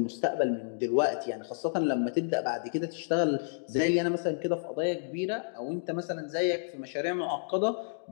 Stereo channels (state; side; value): silent; right; digital silence